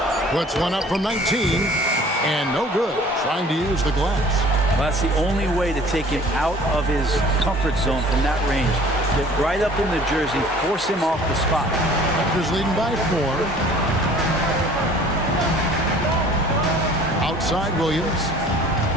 Puts one up from 19. And no good. Trying to use the glass. Well, that's the only way to take him out of his comfort zone from that range. Get right up in the jersey, force him off the spot. Raptors leading by 4. Outside Williams.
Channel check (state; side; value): normal; both; correlation 0.50